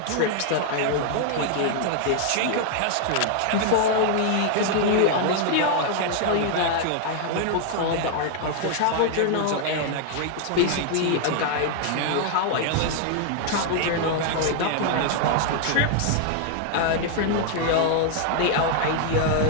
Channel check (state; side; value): different; both; correlation 0.00